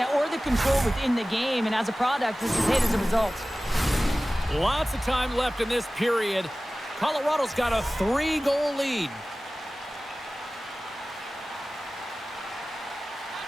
or the control within the game, and as a product, this is hit as a result. Lots of time left in this period. Colorado's got a 3-goal lead.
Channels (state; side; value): normal; both; correlation 0.97